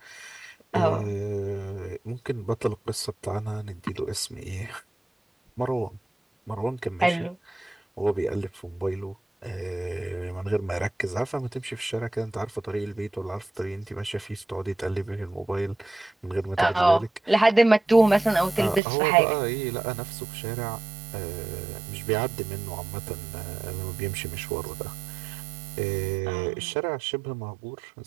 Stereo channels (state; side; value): drops out; left; at 18.8 s